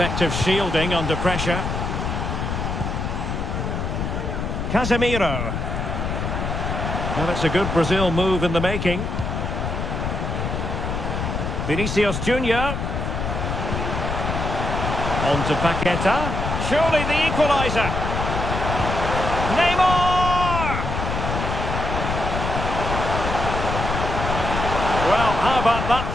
shielding under pressure. Casemiro. Well, that's a good Brazil move in the making. Vinicius Junior. On to Paqueta. Surely the equaliser. Neymar! Well, how about that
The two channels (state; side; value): noise; left; rumble, 3 dB below the sound